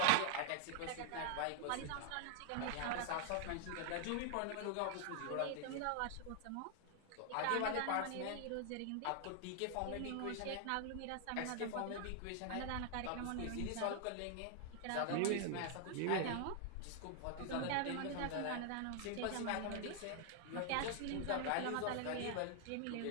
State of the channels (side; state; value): both; different; correlation 0.00